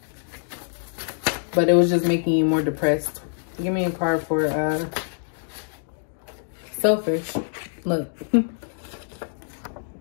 But it was just making you more depressed. Give me a card for selfish. Look.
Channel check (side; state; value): right; silent; digital silence